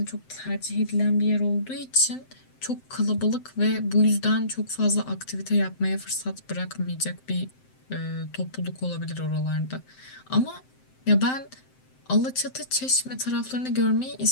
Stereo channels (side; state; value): right; late; 7.7 ms